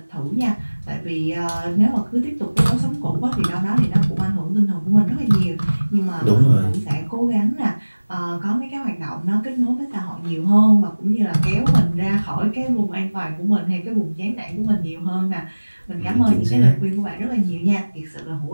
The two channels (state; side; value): inverted; both; correlation -1.00